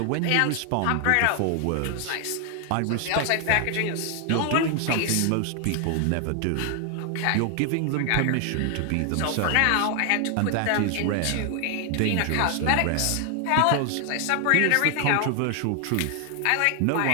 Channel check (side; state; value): both; different; correlation 0.00